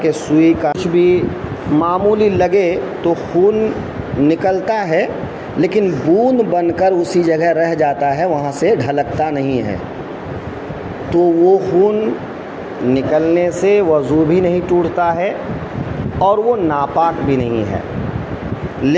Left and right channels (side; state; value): both; identical; correlation 1.00